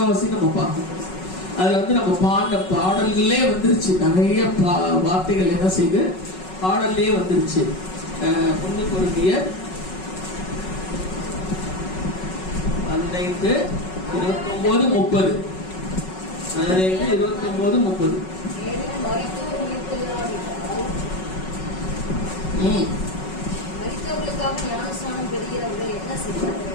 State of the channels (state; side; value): late; right; 5.4 ms